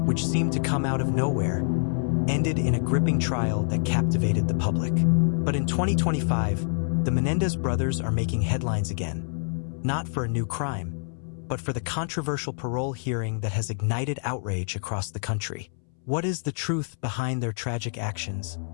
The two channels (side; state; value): right; silent; 61 dB below the other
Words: which seemed to come out of nowhere, ended in a gripping trial that captivated the public. But in 2025, the Menendez brothers are making headlines again, not for a new crime, but for the controversial parole hearing that has ignited outrage across the country. What is the truth behind their tragic actions,